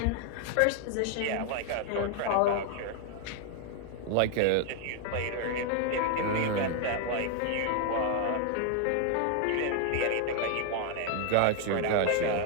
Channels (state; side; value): different; both; correlation 0.00